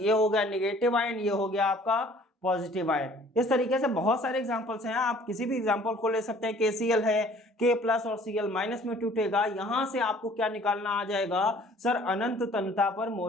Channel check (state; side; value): normal; both; correlation 0.54